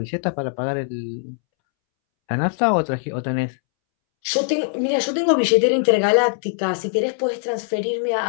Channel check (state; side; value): silent; right; 65 dB below the other